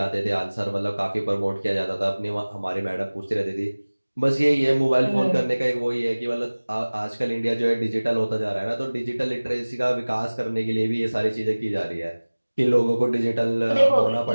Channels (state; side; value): inverted; both; correlation -1.00